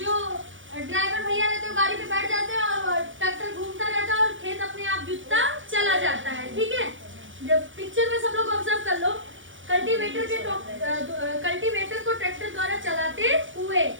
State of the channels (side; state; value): left; late; 0.56 ms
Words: ड्राइवर भैया रहते हैं गाड़ी पे बैठ जाते हैं और ट्रैक्टर घूमता रहता है और खेत अपने आप जुतता चला जाता है। ठीक है, जब पिक्चर में सब लोग ऑब्जर्व कर लो, कल्टीवेटर को ट्रैक्टर द्वारा चलाते हुए।